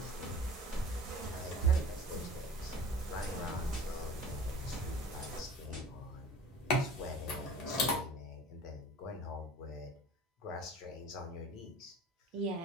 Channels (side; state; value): both; normal; correlation 0.42